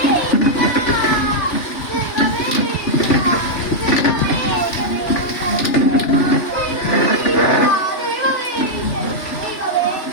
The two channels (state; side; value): late; right; 3.4 ms